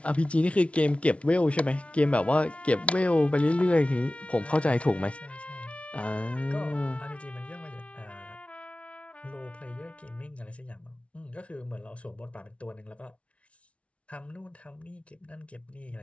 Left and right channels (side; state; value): right; late; 0.062 ms